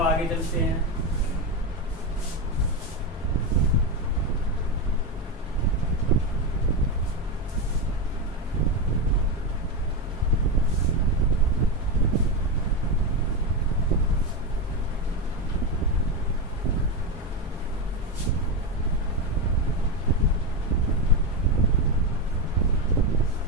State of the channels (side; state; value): both; normal; correlation 0.12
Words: आगे चलते हैं।